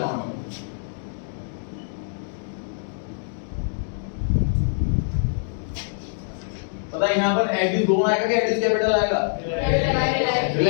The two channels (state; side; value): silent; right; digital silence